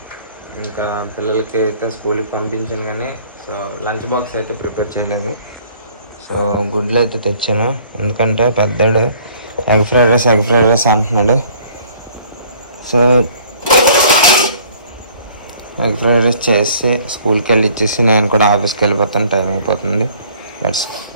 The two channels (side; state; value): both; inverted; correlation -0.56